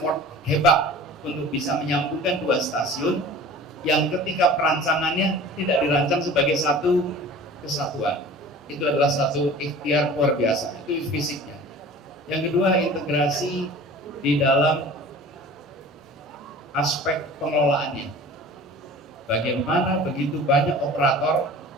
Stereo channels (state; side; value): normal; both; correlation 0.41